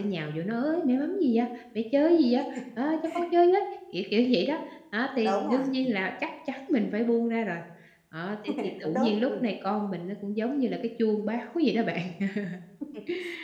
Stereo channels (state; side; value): identical; both; correlation 1.00